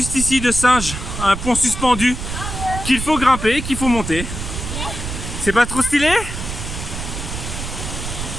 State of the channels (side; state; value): right; noise; rumble, 6 dB below the sound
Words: ici de singe, un pont suspendu qu'il faut grimper, qu'il faut monter. C'est pas trop stylé?